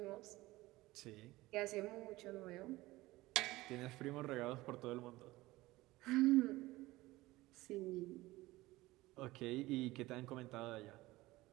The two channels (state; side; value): quieter; left; 18.9 dB